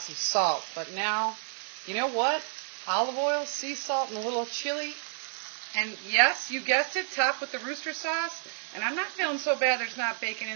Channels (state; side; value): silent; left; digital silence